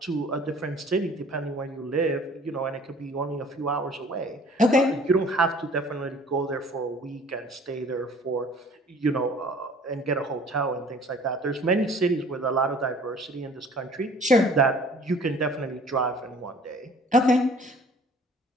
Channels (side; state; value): both; normal; correlation 0.51